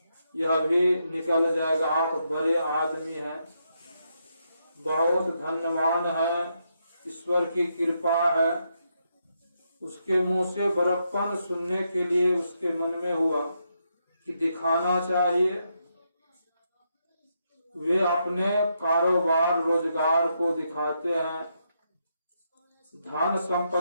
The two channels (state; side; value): inverted; both; correlation -0.80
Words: यह भी निकल जाएगा, आप बड़े आदमी हैं, बहुत धन्यवान है, ईश्वर की कृपा है। उसके मुंह से बड़प्पन सुनने के लिए उसके मन में हुआ कि दिखाना चाहिए। वे अपने कारोबार रोजगार को दिखाते हैं, धन